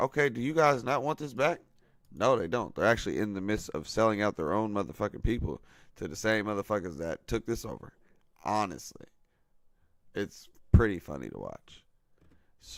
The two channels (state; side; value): identical; both; correlation 1.00